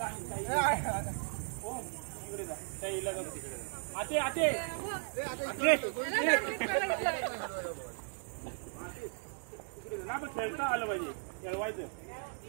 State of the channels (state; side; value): silent; left; 54 dB below the other